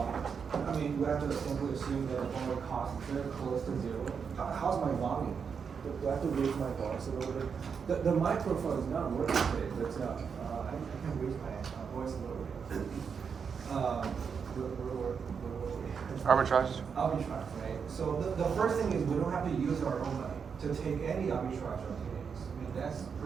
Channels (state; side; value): quieter; left; 6.3 dB